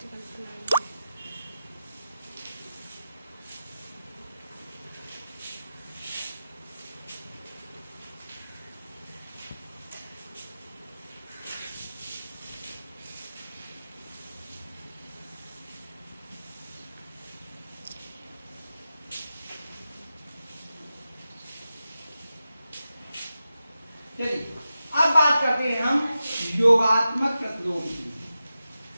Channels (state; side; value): inverted; both; correlation -0.92